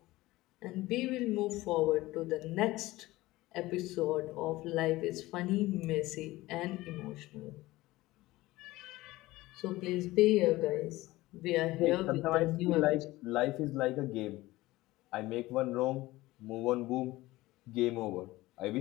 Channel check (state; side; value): quieter; right; 18.5 dB